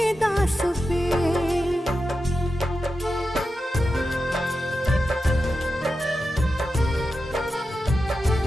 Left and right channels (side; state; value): both; normal; correlation 0.90